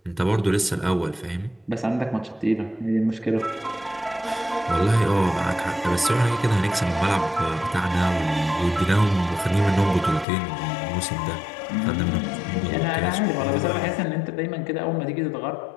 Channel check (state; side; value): drops out; right; at 10.2 s